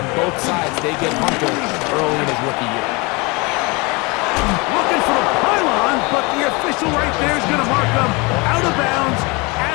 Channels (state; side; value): quieter; right; 26.9 dB